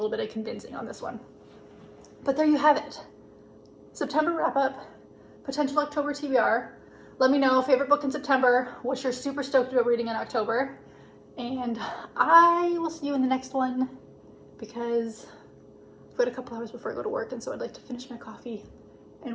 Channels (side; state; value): both; identical; correlation 1.00